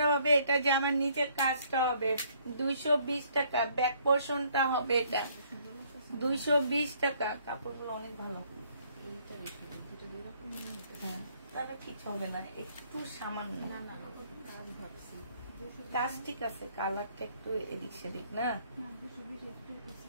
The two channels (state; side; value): inverted; both; correlation -0.64